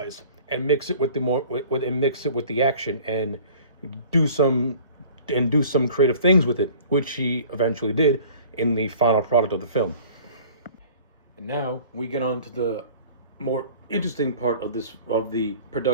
and mix it with the action and do some creative things with it, which he eventually did in the final product of the film. And now we get on to the more interesting part of the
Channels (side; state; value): both; inverted; correlation -0.48